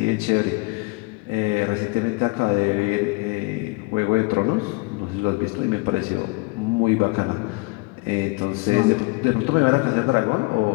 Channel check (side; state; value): right; quieter; 25.9 dB